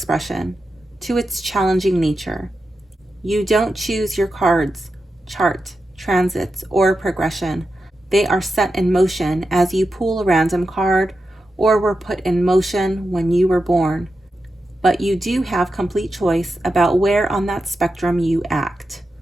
to its challenging nature. You don't choose your cards, chart, transits, or progression. They are set in motion as you pull a random card or were put in motion when you were born. But you do have complete choice about where on that spectrum you act.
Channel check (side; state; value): both; normal; correlation 0.90